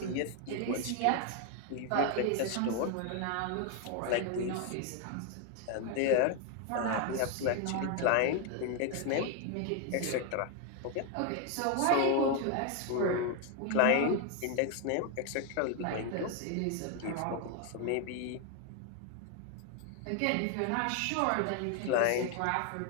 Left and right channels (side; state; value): both; different; correlation 0.00